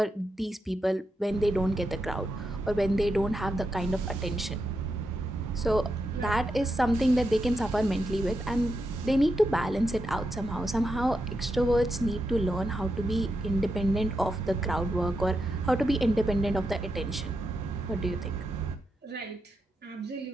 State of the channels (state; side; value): normal; both; correlation 0.85